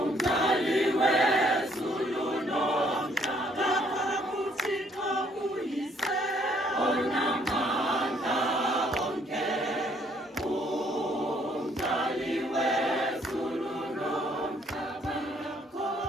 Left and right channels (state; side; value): normal; both; correlation 0.65